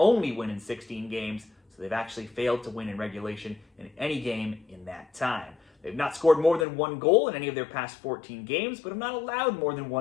win in 16 games, so they've actually failed to win in regulation in any game in that time. They've not scored more than 1 goal in any of their past 14 games, but have not allowed more than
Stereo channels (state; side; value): drops out; right; at 6.7 s